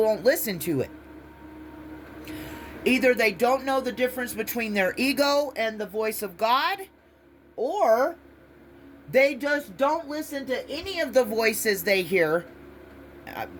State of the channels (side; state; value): both; identical; correlation 1.00